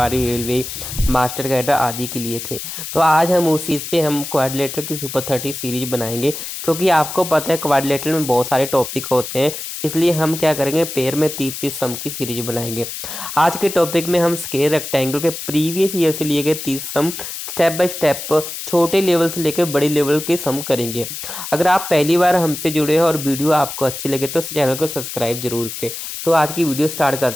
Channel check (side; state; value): left; noise; hiss, 8 dB below the sound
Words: रेलवे, मास्टर कैडर आदि के लिए थे। तो आज हम उस चीज़ पे हम क्वाड्रिलेटरल की सुपर 30 सीरीज बनाएंगे, क्योंकि आपको पता है क्वाड्रिलेटरल में बहुत सारे टॉपिक होते हैं। इसलिए हम क्या करेंगे, पेयर में 30-30 सम की सीरीज बनाएंगे। आज के टॉपिक में हम स्क्वायर रेक्टेंगल के प्रीवियस ईयर से लिए गए 30 सम स्टेप बाय स्टेप छोटे लेवल से लेकर बड़े लेवल के सम करेंगे। अगर आप पहली बार हमसे जुड़े हैं और वीडियो आपको अच्छी लगे तो चैनल को सब्सक्राइब जरूर करें। तो आज की वीडियो स्टार्ट